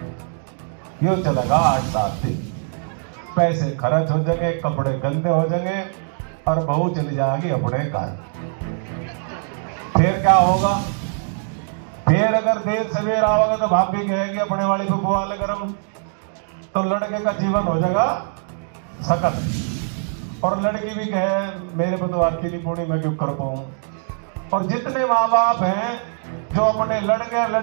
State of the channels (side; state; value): left; silent; 64 dB below the other